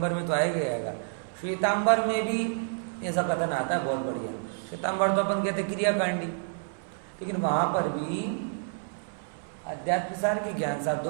में तो आएगा, श्वेतांबर में भी ऐसा कथन आता है, बहुत बढ़िया। श्वेतांबर तो अपन कहते क्रियाकांडी, लेकिन वहां पर भी अध्यात्म सार के ज्ञान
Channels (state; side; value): silent; left; 59 dB below the other